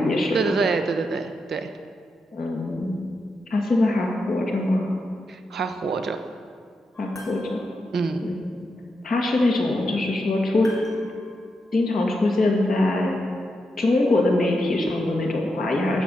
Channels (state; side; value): normal; both; correlation 0.85